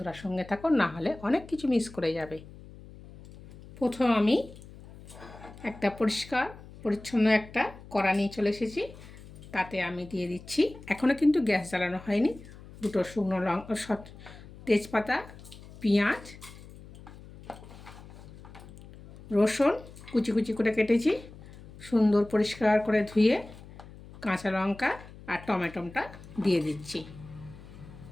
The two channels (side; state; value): left; noise; hum, 18 dB below the sound